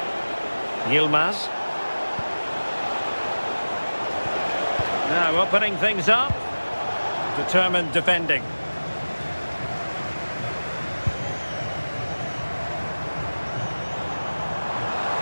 Yilmaz. Now opening things up. Determined defending.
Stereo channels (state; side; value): inverted; both; correlation -1.00